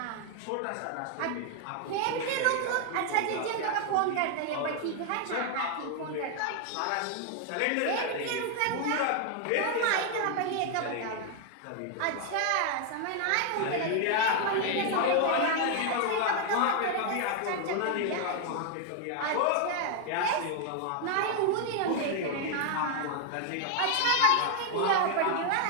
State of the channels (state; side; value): different; both; correlation 0.00